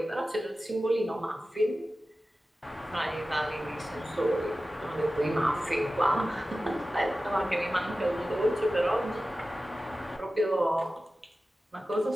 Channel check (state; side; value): normal; both; correlation 0.95